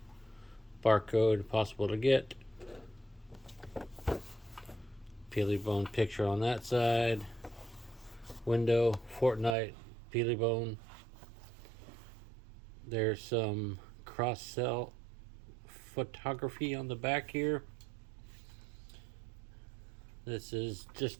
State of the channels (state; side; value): drops out; left; at 9.6 s